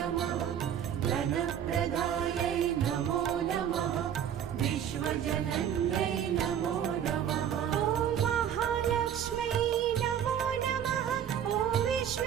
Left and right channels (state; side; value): quieter; left; 9.3 dB